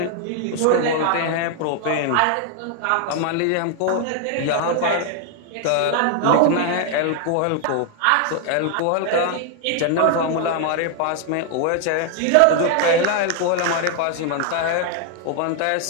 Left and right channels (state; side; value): different; both; correlation 0.00